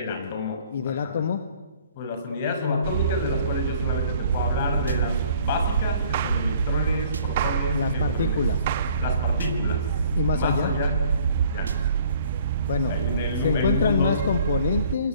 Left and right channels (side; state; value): both; inverted; correlation -0.56